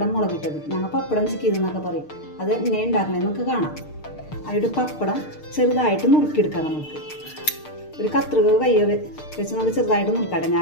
മുളകിട്ടത്. ഞങ്ങൾ പപ്പടം ചിക്കിയതെന്നൊക്കെ പറയും. അത് എങ്ങനെ ഉണ്ടാക്കണമെന്ന് നമുക്ക് കാണാം. അതിൻ്റെ പപ്പടം ചെറുതായിട്ട് നുറുക്കിയെടുക്കാം. നമുക്ക് ഒരു കത്രിക കയ്യോ വെച്ച് നമുക്ക് ചെറുതായിട്ട് നുറുക്കാട്ടെ.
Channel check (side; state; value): right; late; 6.6 ms